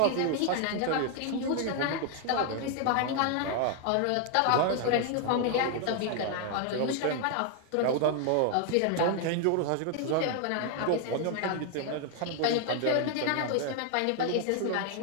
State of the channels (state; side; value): different; both; correlation 0.00